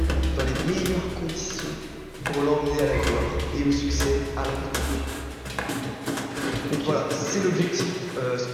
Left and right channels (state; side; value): identical; both; correlation 1.00